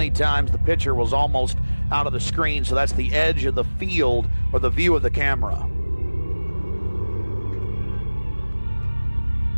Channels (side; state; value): both; inverted; correlation -1.00